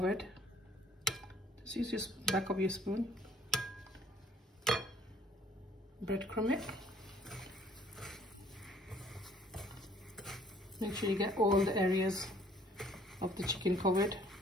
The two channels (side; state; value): both; normal; correlation 0.59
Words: Just use your back of your spoon. Breadcrumb it. Make sure you get all the areas of the chicken covered.